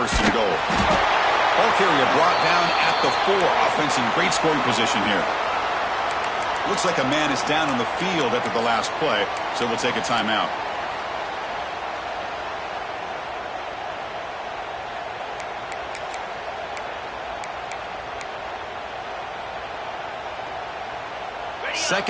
and goal. Ball carrier brought down at the 4. Offense in great scoring position here. Looks like a man is down on the field after the last play, so we'll take a timeout.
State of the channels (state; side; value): identical; both; correlation 1.00